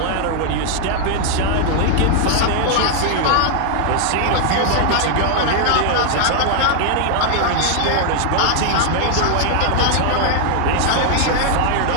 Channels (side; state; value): both; different; correlation 0.00